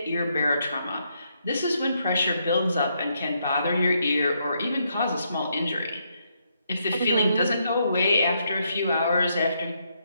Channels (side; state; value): both; inverted; correlation -0.77